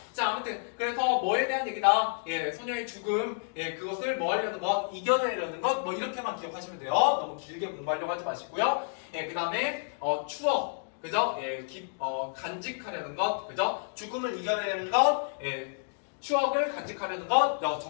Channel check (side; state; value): right; silent; digital silence